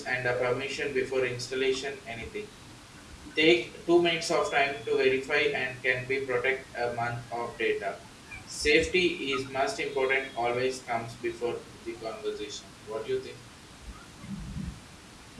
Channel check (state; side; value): identical; both; correlation 1.00